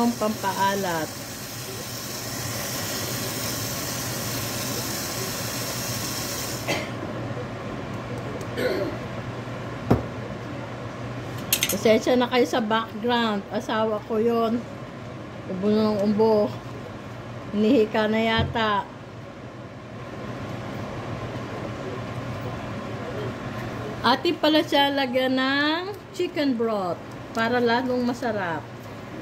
pampaalat. Pasensya na kayo sa background. Asawa ko yon. Ubo na ng umbo. Hinihika na yata. Atin pala siya lagyan ng chicken broth para lalong masarap.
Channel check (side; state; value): both; identical; correlation 1.00